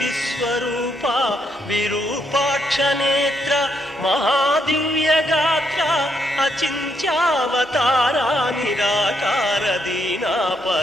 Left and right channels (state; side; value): normal; both; correlation 0.76